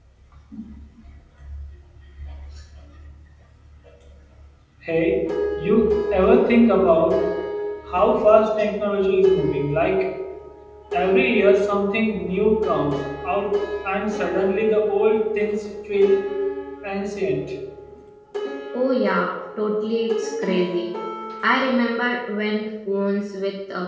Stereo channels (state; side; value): identical; both; correlation 1.00